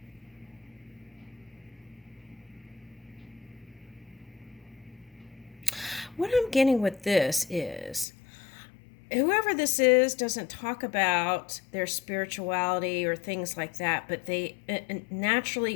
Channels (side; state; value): right; drops out; at 8.1 s